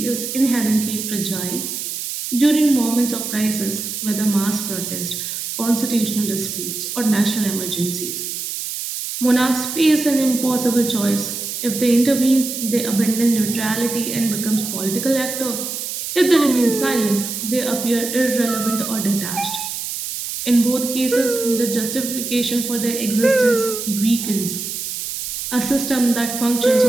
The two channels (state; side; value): noise; right; hiss, 5 dB below the sound